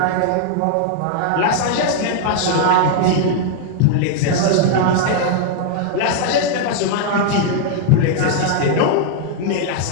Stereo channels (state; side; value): different; both; correlation -0.01